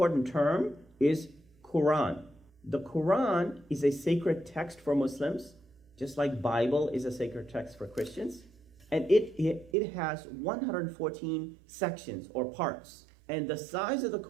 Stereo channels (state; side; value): drops out; left; at 9.8 s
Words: term is Quran. The Quran is a sacred text for Muslims, just like Bible is a sacred text for Christians. And it has 114 sections or parts. And the size of the